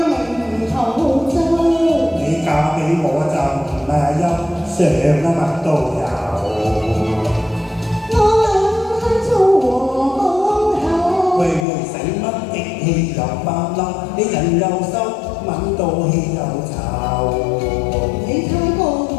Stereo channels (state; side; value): drops out; right; at 11.7 s